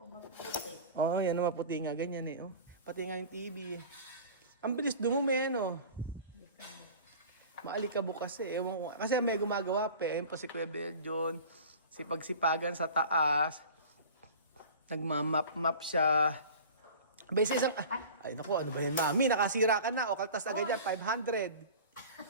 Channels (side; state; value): both; inverted; correlation -0.39